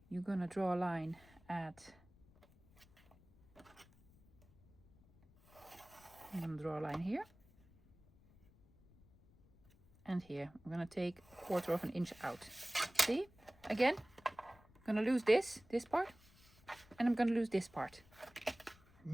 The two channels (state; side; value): noise; left; rumble, 27 dB below the sound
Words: You're gonna draw a line at, I'm gonna draw a line here. And here, I'm gonna take 1/4 of an inch out. See? Again, I'm gonna lose this part, and I'm gonna lose this part.